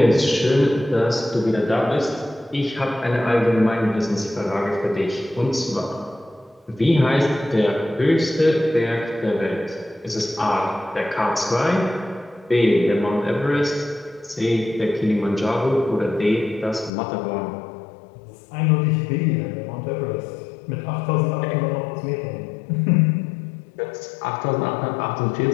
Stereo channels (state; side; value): drops out; right; at 16.9 s